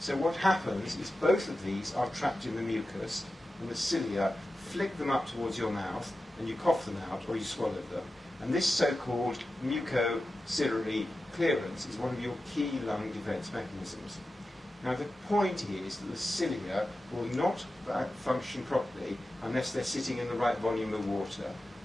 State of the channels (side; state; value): both; normal; correlation 0.93